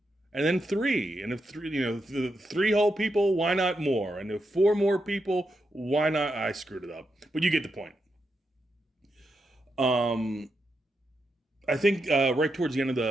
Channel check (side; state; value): both; normal; correlation 0.85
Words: and then 3, and if 3, the 3 whole people, why not more? And if 4 more people, why not? I screwed it up, but you get the point. I think right towards the end of